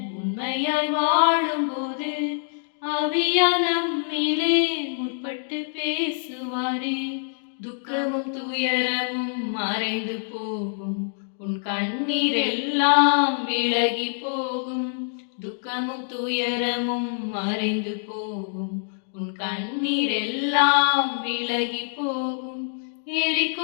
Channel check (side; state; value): right; silent; digital silence